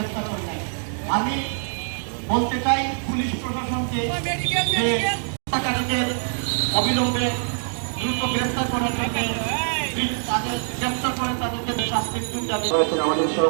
করে নাই। আমি বলতে চাই পুলিশ প্রশাসনকে যে হত্যাকারীদের অবিলম্বে দ্রুত গ্রেফতার করার জন্য তাদের গ্রেফতার করে তাদেরকে শাস্তির দাবি করেছেন আমাদের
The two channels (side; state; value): left; silent; digital silence